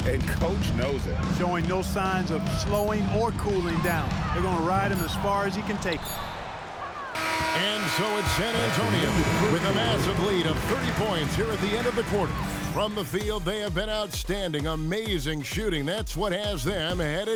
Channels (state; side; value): identical; both; correlation 1.00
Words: and Coach knows it. Showing no signs of slowing or cooling down. They're going to ride him as far as he can take him. And so it's San Antonio with a massive lead of 30 points here at the end of the quarter. From the field, they have been outstanding, amazing shooting. That's what has them